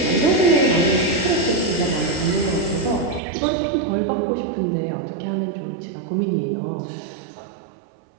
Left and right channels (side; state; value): left; drops out; at 3.2 s